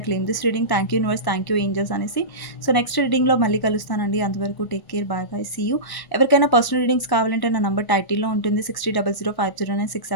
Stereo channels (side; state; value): right; late; 1.1 ms